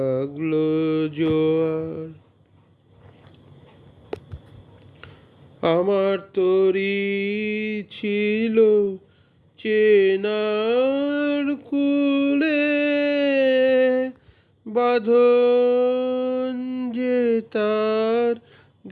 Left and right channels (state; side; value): identical; both; correlation 1.00